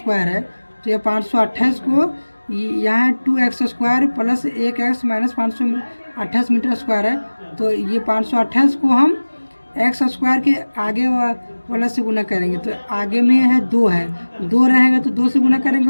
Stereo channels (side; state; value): both; inverted; correlation -1.00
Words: है, तो ये 528 को यहाँ है 2x square plus 1x minus 528 metre square है, तो ये 528 को हम x स्क्वायर के आगे वाला से गुना करेंगे। तो आगे में है 2 है, 2 रहेगा तो 2 से गुना करेंगे,